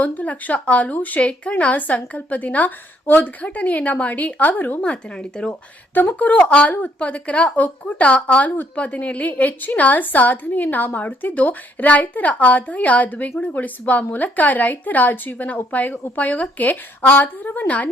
1 ಲಕ್ಷ ಹಾಲು ಶೇಖರಣಾ ಸಂಕಲ್ಪ ದಿನ ಉದ್ಘಾಟನೆಯನ್ನ ಮಾಡಿ ಅವರು ಮಾತನಾಡಿದರು. ತುಮಕೂರು ಹಾಲು ಉತ್ಪಾದಕರ ಒಕ್ಕೂಟ ಹಾಲು ಉತ್ಪಾದನೆಯಲ್ಲಿ ಹೆಚ್ಚಿನ ಸಾಧನೆಯನ್ನ ಮಾಡುತ್ತಿದ್ದು, ರೈತರ ಆದಾಯ ದ್ವಿಗುಣಗೊಳಿಸುವ ಮೂಲಕ ರೈತರ ಜೀವನ ಉಪಯೋಗಕ್ಕೆ ಆಧಾರವನ್ನ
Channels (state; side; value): normal; both; correlation 0.69